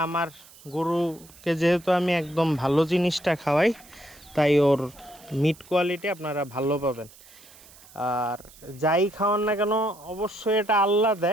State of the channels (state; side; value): noise; right; hiss, 23 dB below the sound